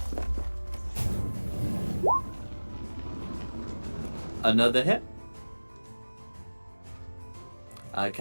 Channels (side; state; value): both; inverted; correlation -1.00